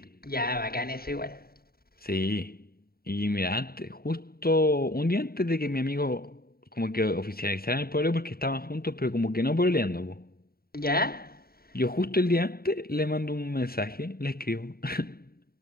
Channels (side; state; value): right; late; 0.44 ms